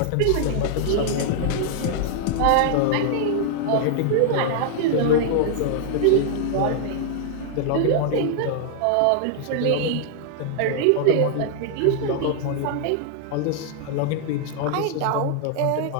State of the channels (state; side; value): different; both; correlation -0.01